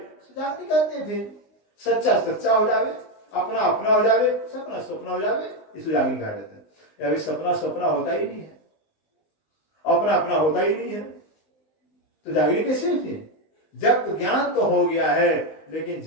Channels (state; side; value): late; right; 19 ms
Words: जागनी कहते हैं। फिर सच्चा सच्चा हो जावे, अपना अपना हो जावे, सपना सपना हो जावे, इसको जागनी कहा जाता है। अभी सपना सपना होता ही नहीं है, अपना अपना होता ही नहीं है, तो जागनी कैसे फिर? जब तो ज्ञान तो हो गया है, लेकिन